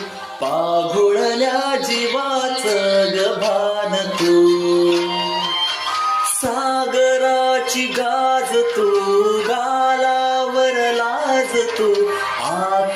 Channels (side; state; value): both; identical; correlation 1.00